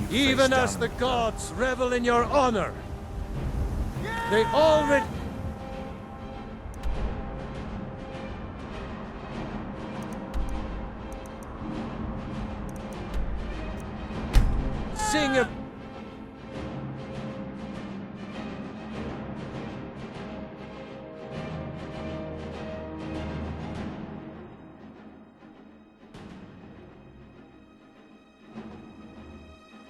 you face Even down as the in gods revel in your honor. They already... Sing a...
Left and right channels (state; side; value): identical; both; correlation 1.00